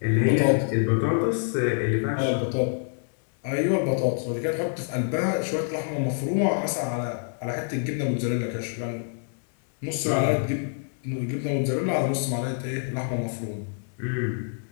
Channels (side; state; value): right; silent; digital silence